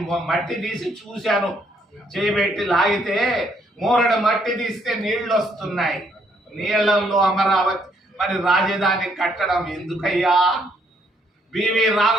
మట్టి తీసి చూశాను, చేయబెట్టి లాగితే మూరడు మట్టి తీస్తే నీళ్లు వస్తున్నాయి. నీళ్లలో అమరావతి మరి రాజధాని కట్టడం ఎందుకయ్యా? బివి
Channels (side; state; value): both; normal; correlation 0.70